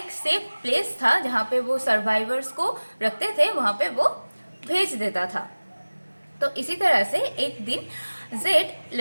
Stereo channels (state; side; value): inverted; both; correlation -1.00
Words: सेफ प्लेस था जहाँ पे वो सर्वाइवर्स को रखते थे, वहाँ पे वो भेज देता था। तो इसी तरह से एक दिन जेड